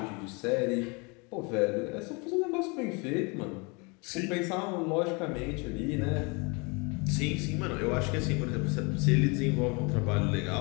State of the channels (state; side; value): quieter; right; 30.1 dB